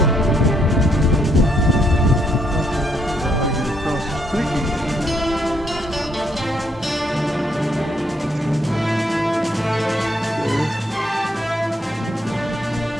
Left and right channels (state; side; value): normal; both; correlation 0.73